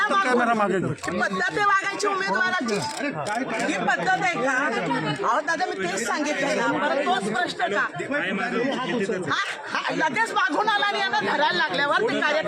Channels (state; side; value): identical; both; correlation 1.00